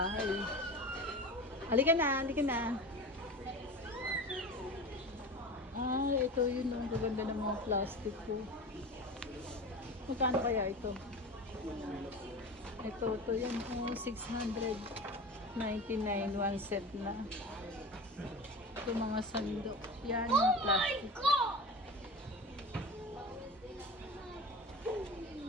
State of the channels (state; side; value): normal; both; correlation 0.32